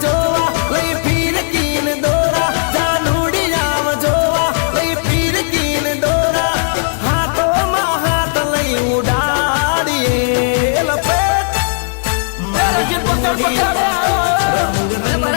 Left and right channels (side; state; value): right; silent; digital silence